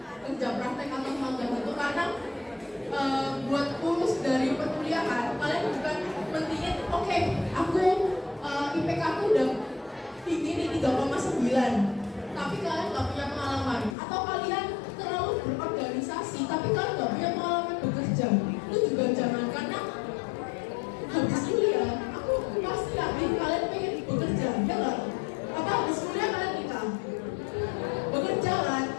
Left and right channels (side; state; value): right; drops out; at 14.0 s